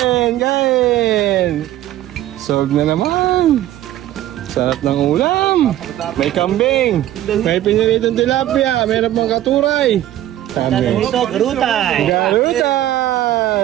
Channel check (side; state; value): left; quieter; 13.4 dB